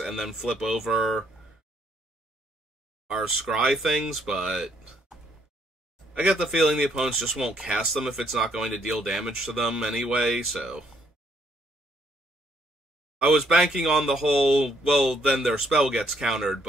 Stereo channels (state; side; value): normal; both; correlation 0.70